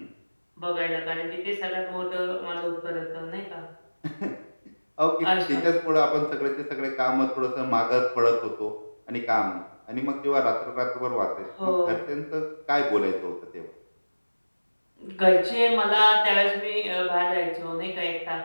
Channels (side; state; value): both; inverted; correlation -1.00